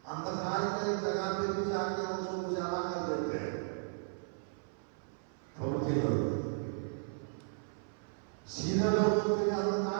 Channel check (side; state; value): left; silent; 54 dB below the other